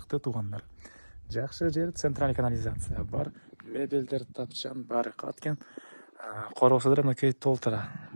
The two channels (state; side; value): inverted; both; correlation -1.00